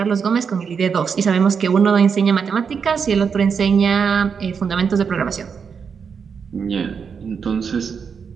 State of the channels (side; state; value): left; quieter; 6.3 dB